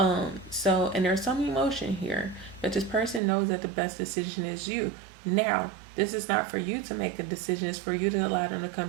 there's some emotion here, but this person knows that the best decision is you. Now, this is not for you to make a decision. It's for you to allow them to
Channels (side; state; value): left; drops out; at 3.2 s